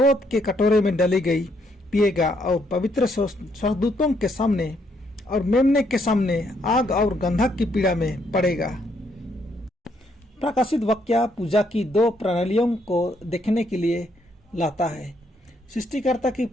के कटोरे में डाली गई पिएगा, और पवित्र स्वर्गदूतों के सामने और मेमने के सामने आग और गंधक की पीड़ा में पड़ेगा। प्रकाशित वाक्य पूजा की दो प्रणालियों को देखने के लिए लाता है, सृष्टिकर्ता की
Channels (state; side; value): normal; both; correlation 0.73